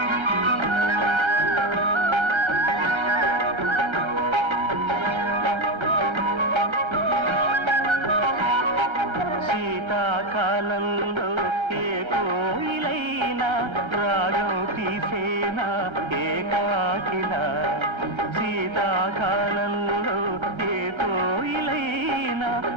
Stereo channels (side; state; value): left; late; 1.3 ms